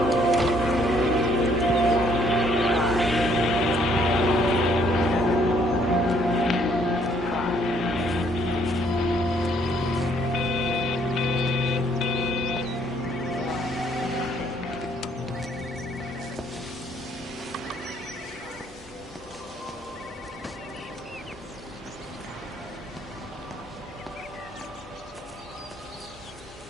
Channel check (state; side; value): normal; both; correlation 0.66